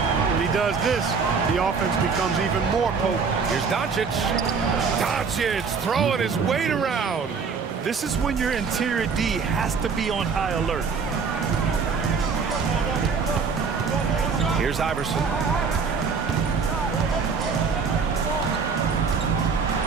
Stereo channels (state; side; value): quieter; left; 5.4 dB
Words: he does this, the offense becomes even more potent. Here's Doncic. Doncic throwing his weight around. This is when your interior D has to be on high alert. Here's Iverson.